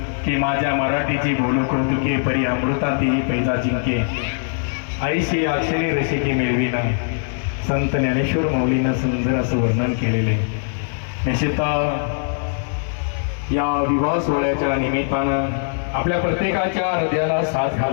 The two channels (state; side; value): silent; right; digital silence